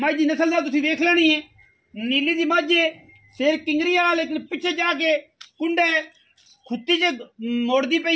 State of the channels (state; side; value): identical; both; correlation 1.00